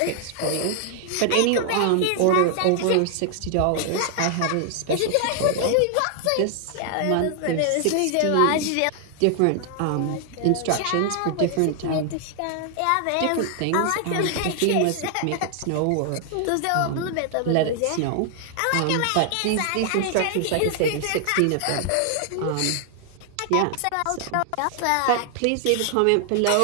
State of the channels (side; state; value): both; different; correlation 0.00